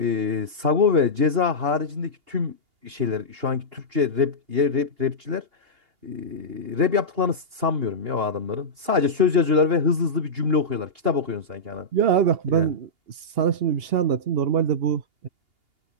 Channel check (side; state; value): left; late; 2.8 ms